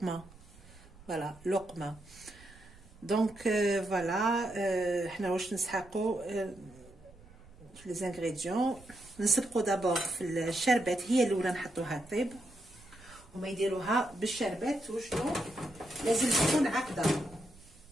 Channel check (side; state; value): right; noise; rumble, 23 dB below the sound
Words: فوالا لقمة. دونك فوالا حنا واش نسحقوا في لي زانغريديون. نسبقوا دابور في الشربات، هي الاولى نحطوها طيب وما يديروها بالشربات. وشنو لازم تكون عقده.